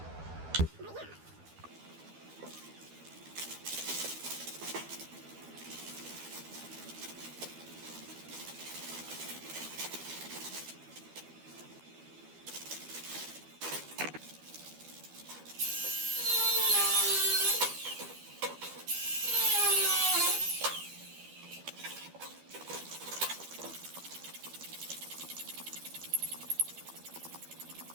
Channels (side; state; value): left; late; 12 ms